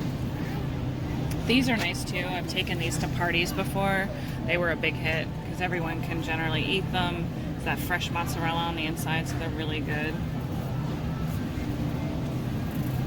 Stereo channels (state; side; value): identical; both; correlation 1.00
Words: These are nice too. I've taken these to parties before. They were a big hit because everyone can generally eat them. It's that fresh mozzarella on the inside, so they're really good.